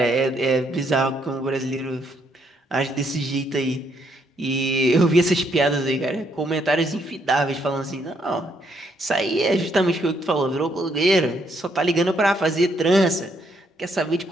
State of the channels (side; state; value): both; normal; correlation 0.73